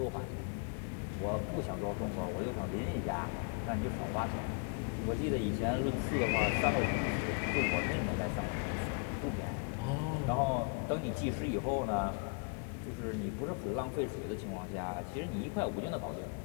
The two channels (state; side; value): quieter; right; 35.0 dB